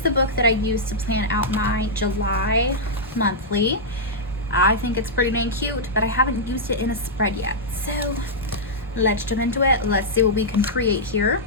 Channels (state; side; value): normal; both; correlation -0.08